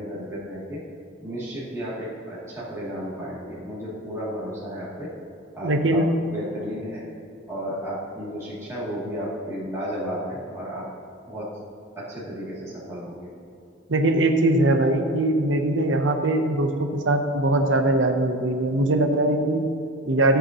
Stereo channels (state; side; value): normal; both; correlation 0.30